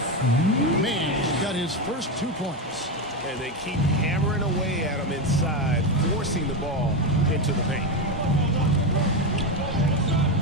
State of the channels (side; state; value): both; normal; correlation 0.12